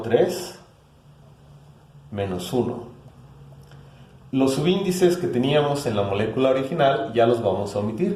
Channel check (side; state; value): both; identical; correlation 1.00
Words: menos 1. Los subíndices que teníamos en la molécula original ya los vamos a